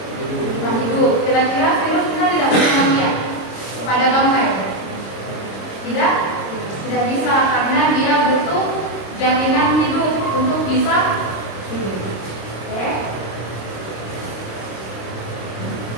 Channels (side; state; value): right; late; 26 ms